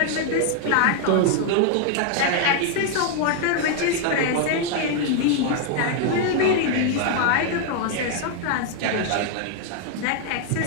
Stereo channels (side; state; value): both; different; correlation 0.00